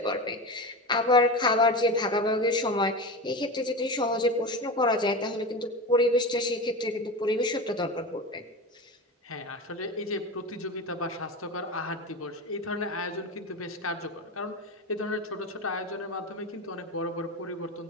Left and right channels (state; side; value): normal; both; correlation 0.25